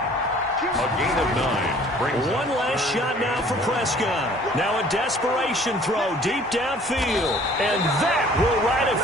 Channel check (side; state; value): both; normal; correlation 0.53